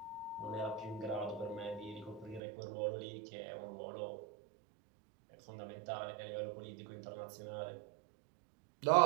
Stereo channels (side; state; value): left; drops out; at 2.4 s